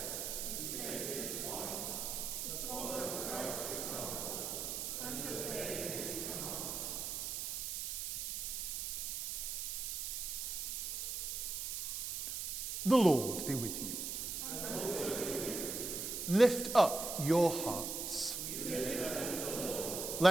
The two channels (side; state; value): right; noise; hiss, 3 dB below the sound